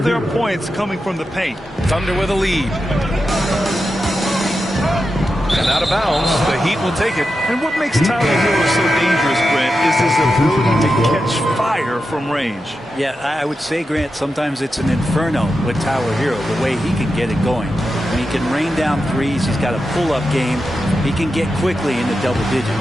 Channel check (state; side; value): normal; both; correlation 0.89